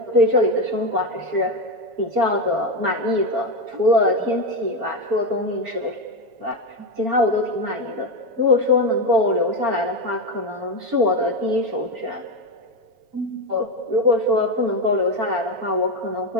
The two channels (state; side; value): late; left; 7.1 ms